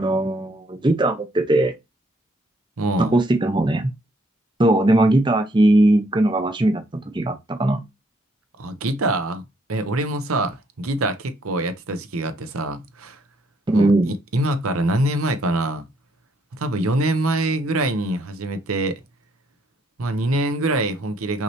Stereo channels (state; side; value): normal; both; correlation 0.70